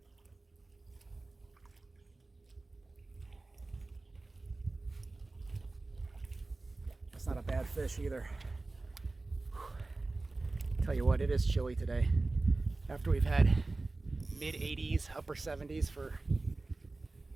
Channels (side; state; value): left; quieter; 3.2 dB